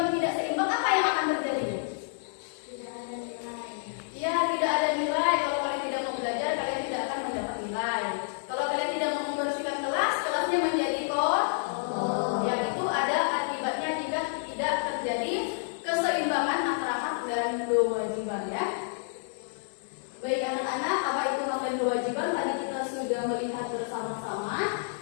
tidak seimbang, apa yang akan terjadi? Tidak ada nilai. Iya, tidak ada nilai. Kalau kalian tidak mau belajar, kalian tidak akan mendapat nilai. Kalau kalian tidak mau membersihkan kelas, kelasnya menjadi kotor. Yang itu ada akibatnya jika tidak terjadi keseimbangan antara hak dan kewajiban ya. Baik anak-anak, apa itu hak dan kewajiban? Tadi kita sudah melihat bersama-sama.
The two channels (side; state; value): right; silent; digital silence